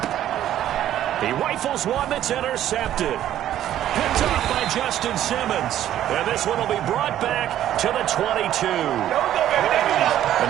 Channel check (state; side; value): quieter; left; 11.9 dB